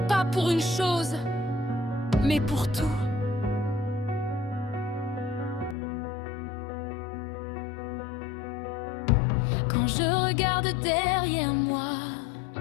pas pour une chose, mais pour tout. Quand je regarde derrière moi,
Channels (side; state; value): right; drops out; at 5.8 s